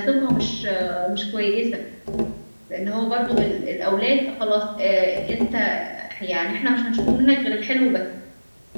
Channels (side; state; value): both; inverted; correlation -1.00